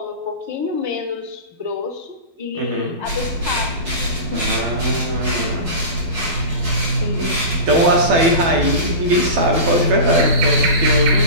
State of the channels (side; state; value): left; late; 12 ms